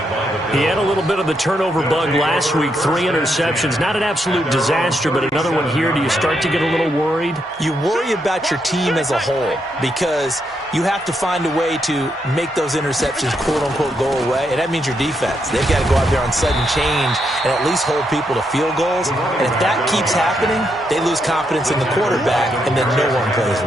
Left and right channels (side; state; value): both; normal; correlation 0.79